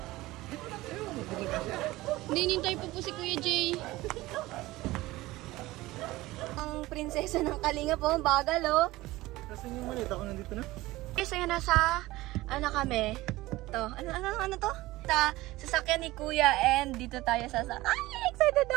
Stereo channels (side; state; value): left; quieter; 18.6 dB